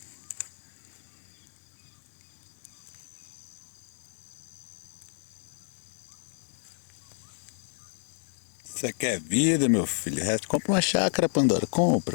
Você quer vida, meu filho? Compra uma chácara, Pandora.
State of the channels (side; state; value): right; silent; digital silence